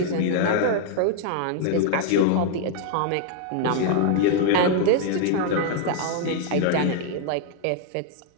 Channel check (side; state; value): both; different; correlation 0.00